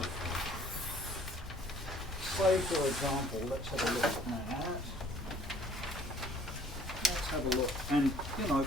Say, for example, let's have a look at that. Let's have a look. And, you know,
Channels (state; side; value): normal; both; correlation 0.56